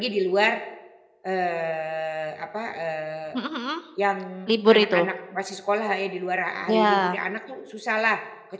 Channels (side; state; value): both; identical; correlation 1.00